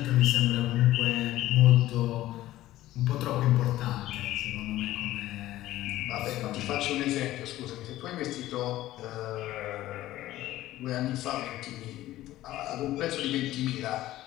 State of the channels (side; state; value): right; quieter; 15.2 dB